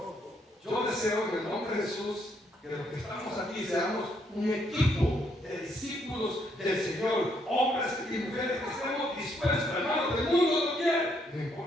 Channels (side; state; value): both; normal; correlation 0.73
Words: Yo deseo en el nombre de Jesús que los que estamos aquí seamos un equipo de discípulos del Señor, hombres y mujeres que estemos dispuestos, hermano, el mundo no quiere, no